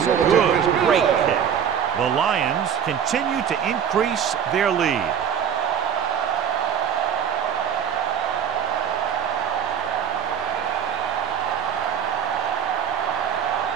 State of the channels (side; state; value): left; quieter; 8.2 dB